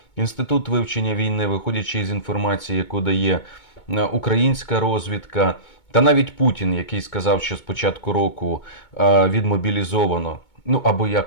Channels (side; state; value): right; late; 2.2 ms